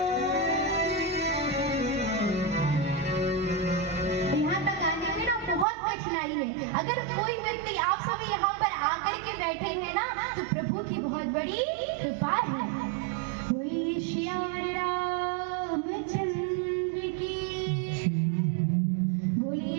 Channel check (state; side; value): drops out; left; at 5.7 s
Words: यहाँ तक आने में ना बहुत कठिनाई है। अगर कोई व्यक्ति, आप सभी यहाँ पर आकर के बैठे हैं ना, तो प्रभु की बहुत बड़ी कृपा है। वही श्री रामचंद्र की,